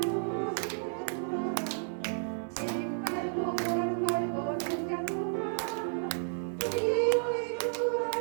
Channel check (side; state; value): left; silent; 56 dB below the other